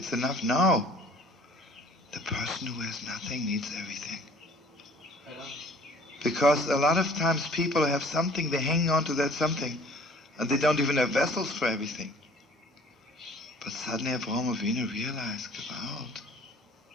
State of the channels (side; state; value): both; normal; correlation 0.52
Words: enough. No. The person who has nothing needs everything. Because a lot of times people have something, they hang on to that something, and they don't even have vessels for everything. But suddenly Avraham Avinu realized, Gewalt,